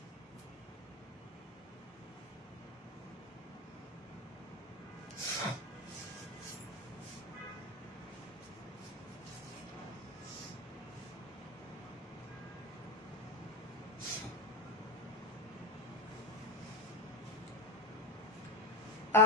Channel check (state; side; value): normal; both; correlation 0.13